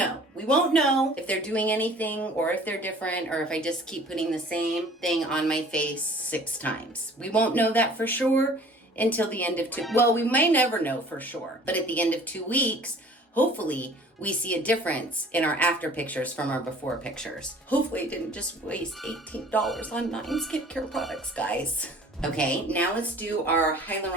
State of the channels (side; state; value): both; normal; correlation 0.50